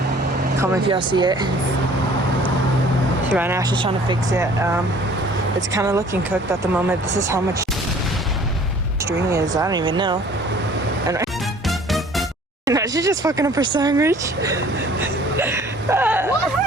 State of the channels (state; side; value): normal; both; correlation 0.52